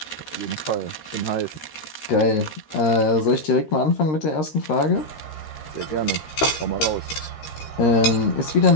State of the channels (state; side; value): late; right; 13 ms